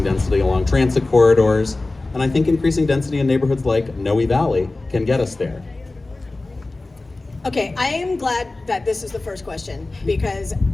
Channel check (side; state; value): right; quieter; 3.1 dB